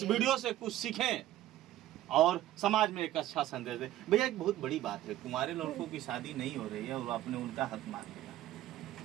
वीडियो से कुछ सीखें और समाज में एक अच्छा संदेश दें। भैया, एक बहुत बड़ी बात है, कुंवारे लड़कों की शादी नहीं हो रही है और आपने उनका हक मान लिया।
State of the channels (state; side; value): quieter; left; 14.1 dB